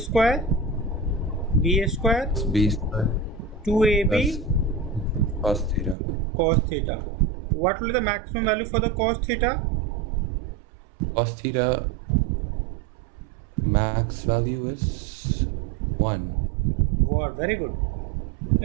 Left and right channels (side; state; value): left; drops out; at 6.0 s